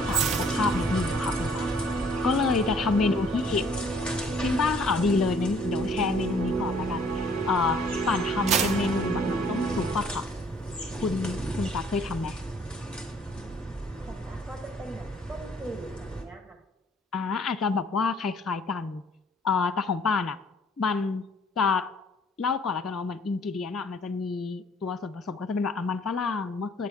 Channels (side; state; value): both; normal; correlation 0.59